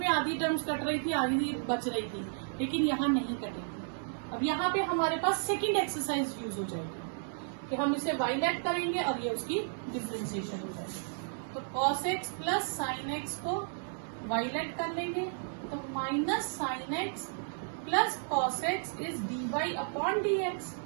आधी टर्म्स कट रही थी, आधी बच रही थी, लेकिन यहाँ नहीं कटेगी। अब यहाँ पे हमारे पास सेकंड एक्सरसाइज यूज हो जाएगी कि हम इसे वाइलेट करेंगे और ये उसकी डिफरेंशिएशन हो जाएगी। तो cos x plus sine x को वाइलेट कर लेंगे, तो minus sine x plus cos x is d y upon d x.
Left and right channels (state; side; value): silent; left; digital silence